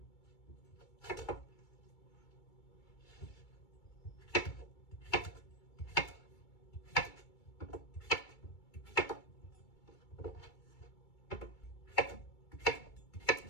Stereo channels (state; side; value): late; right; 2.3 ms